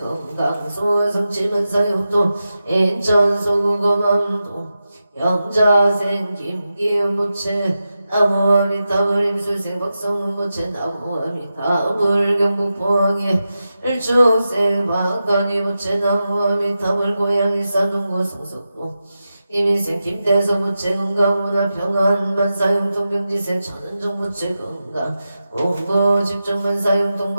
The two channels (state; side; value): inverted; both; correlation -0.91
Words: 소성치문사용도 인천 소구검암도 영자생 김기훈 부채 나무와 미타불 임술생 박성훈 부채 나무와 미타불 경북 포항에 일축생 박간이 부채 나무와 미타불 고양 일산동구 성석도 이민생 김대서 부채 건강 문화평안 만사용통 병지생 천은정 부채 건강 공부 집중만 사용통